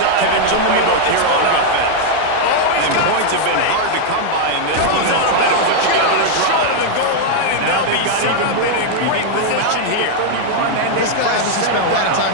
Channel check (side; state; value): both; different; correlation 0.00